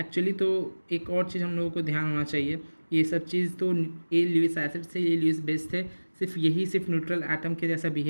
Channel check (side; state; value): both; inverted; correlation -1.00